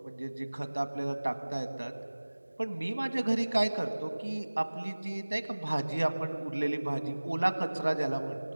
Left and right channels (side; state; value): both; inverted; correlation -1.00